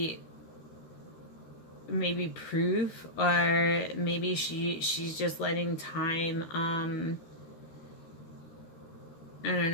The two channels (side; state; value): right; late; 13 ms